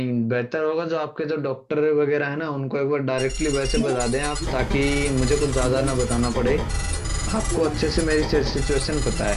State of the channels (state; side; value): identical; both; correlation 1.00